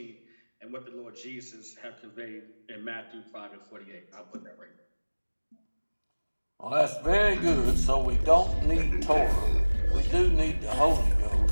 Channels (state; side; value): inverted; both; correlation -1.00